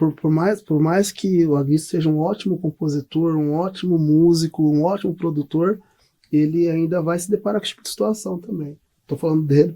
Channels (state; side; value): identical; both; correlation 1.00